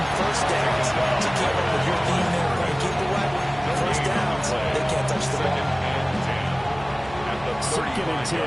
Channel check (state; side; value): noise; right; hum, 18 dB below the sound